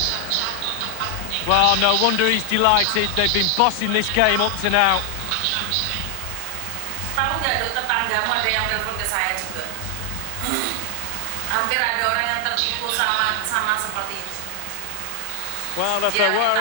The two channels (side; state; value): both; different; correlation 0.00